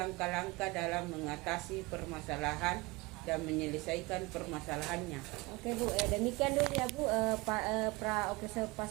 dalam mengatasi permasalahan dan menyelesaikan permasalahannya. Oke Bu, demikian dulu ya Bu pra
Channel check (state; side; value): quieter; left; 23.5 dB